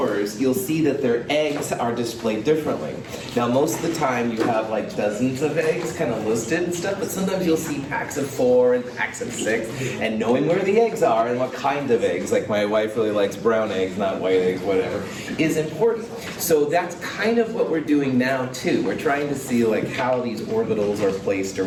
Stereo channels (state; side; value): identical; both; correlation 1.00